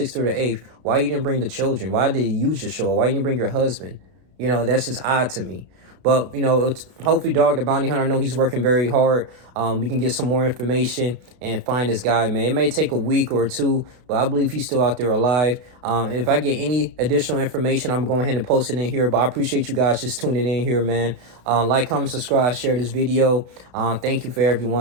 through the 8th, why you didn't bring the children? Why did you just show up? Why you didn't bring your husband? You know, that's just odd to me. But, you know, hopefully Dog the Bounty Hunter, I know he's working very hard. We can get some more information and find this guy, man. It may take a week or two, but I believe he's still out there alive. If I get any additional information, I'm going ahead and post it in here. But I appreciate you guys just tuning in here, man. Like, comment, subscribe, share this video. Thank you for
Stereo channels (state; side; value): late; left; 32 ms